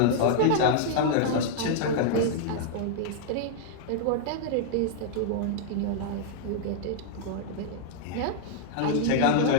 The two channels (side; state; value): both; different; correlation -0.01